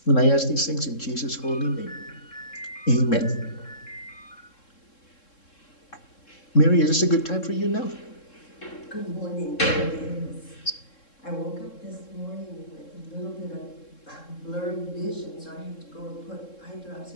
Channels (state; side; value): late; right; 3.7 ms